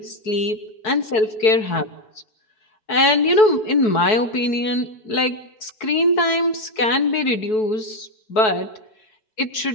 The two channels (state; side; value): late; right; 4.6 ms